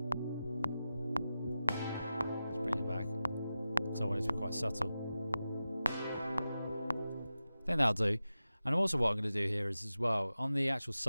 So I want it to be quite subtle. I think that'll do. And also what I'm going to do here is as well, on the actual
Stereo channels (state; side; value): inverted; both; correlation -0.93